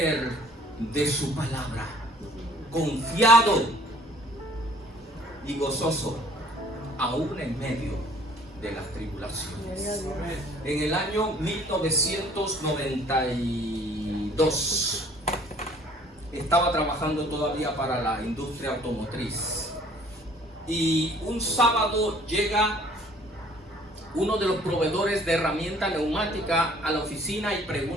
de su palabra. Confiado y gozoso, aún en medio de las tribulaciones. En el año 1992 estaba trabajando todavía para la industria automotriz, y un sábado llega uno de los proveedores de herramienta neumática a la oficina y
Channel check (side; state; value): both; normal; correlation 0.56